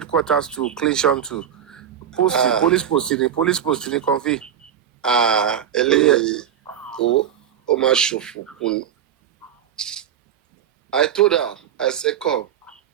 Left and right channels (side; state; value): left; quieter; 9.3 dB